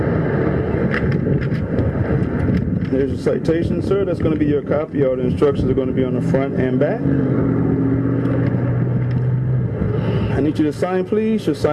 There's a citation, sir. That's going to be your copy. All the instructions are going to be on the front and back. I need you to sign, please. Your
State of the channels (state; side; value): identical; both; correlation 1.00